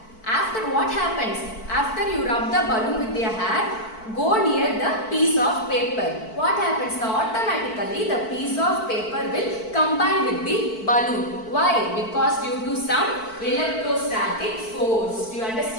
After what happens? After you rub the balloon with your hair, go near the piece of paper. What happens? Automatically the piece of paper will combine with the balloon. Why? Because due to some electrostatic force. Do you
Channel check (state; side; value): late; right; 4.5 ms